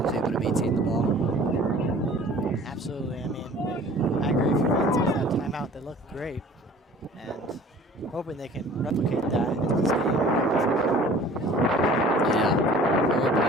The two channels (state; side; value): normal; both; correlation 0.48